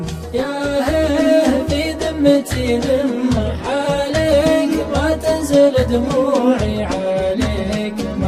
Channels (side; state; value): both; identical; correlation 1.00